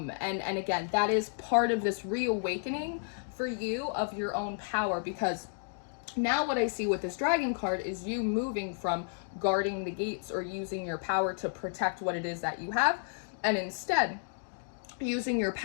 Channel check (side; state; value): right; silent; digital silence